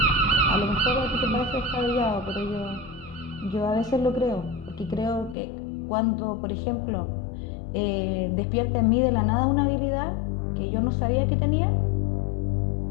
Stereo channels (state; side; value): drops out; right; at 5.4 s